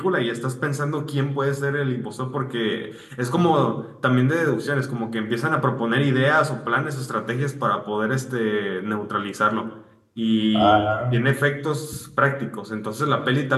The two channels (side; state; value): both; identical; correlation 1.00